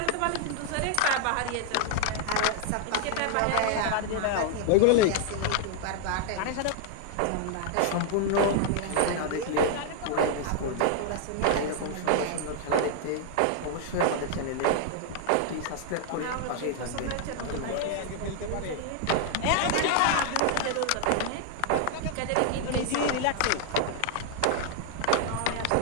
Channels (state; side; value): different; both; correlation 0.00